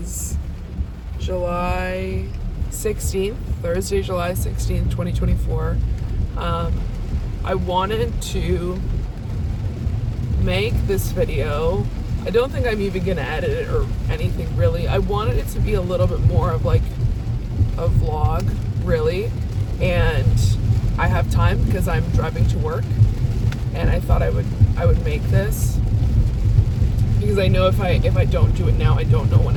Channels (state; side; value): identical; both; correlation 1.00